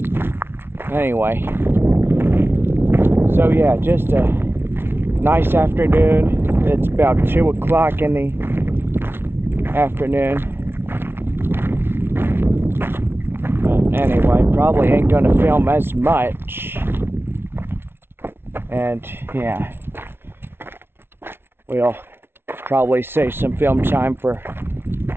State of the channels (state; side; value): late; left; 0.11 ms